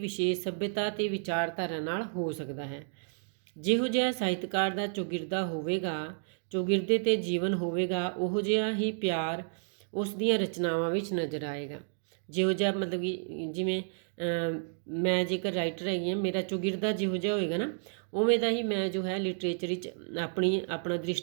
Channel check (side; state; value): left; silent; digital silence